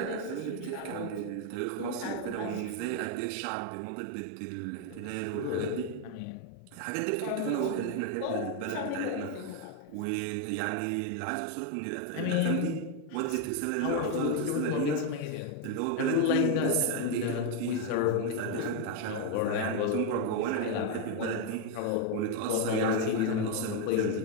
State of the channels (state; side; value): different; both; correlation 0.01